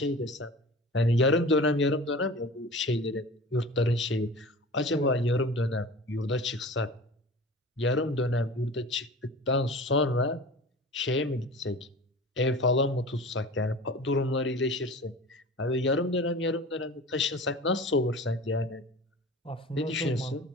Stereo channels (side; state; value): both; normal; correlation 0.38